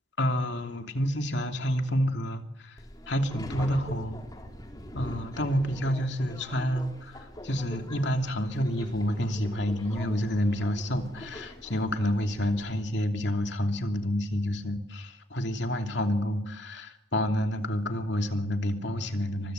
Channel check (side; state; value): both; normal; correlation 0.74